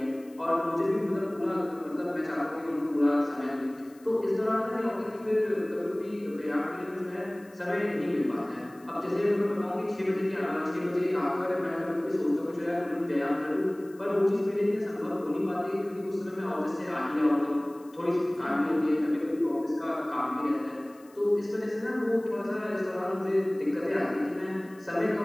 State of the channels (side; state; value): left; noise; hiss, 28 dB below the sound